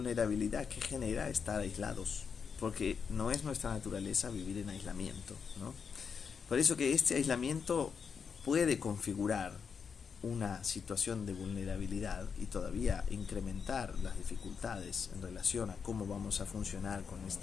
que genera estar aislados, porque no es nuestra naturaleza vivir en aislamiento, ¿no? Por eso que este aislamiento puede configurar una situación de vulnerabilidad y todavía incrementar las dificultades en relación a cómo vamos a funcionar con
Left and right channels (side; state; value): right; quieter; 6.2 dB